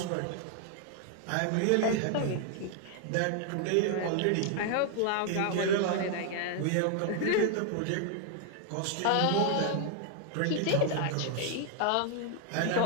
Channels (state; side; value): different; both; correlation 0.00